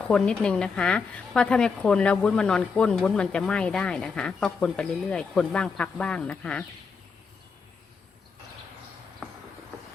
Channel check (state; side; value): quieter; right; 5.2 dB